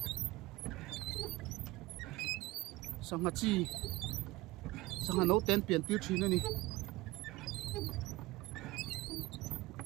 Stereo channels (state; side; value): quieter; left; 20.0 dB